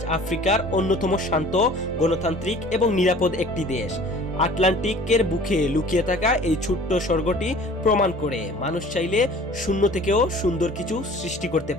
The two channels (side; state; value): both; normal; correlation 0.47